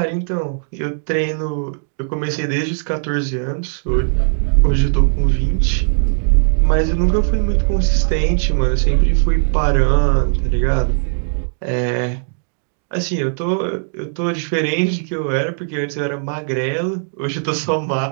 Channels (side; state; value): left; silent; digital silence